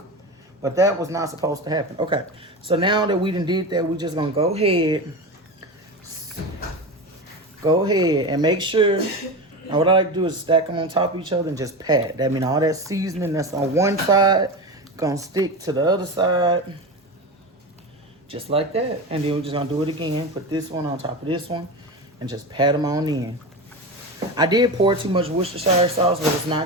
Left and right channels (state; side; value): normal; both; correlation 0.23